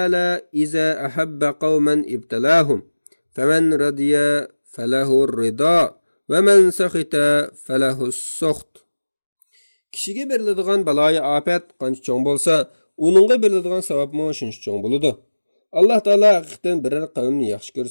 iza ahabba qauman ibtalahum faman radiya falahu rida va man sakhita falahu as-sakht. Kishiga beriladigan baloyi afat qancha cho'ng bo'lsa, uningga beriladigan savobmi shuncha cho'ng bo'ladi. Alloh taolo haqiqatan biror qavmni yaxshi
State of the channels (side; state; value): both; inverted; correlation -1.00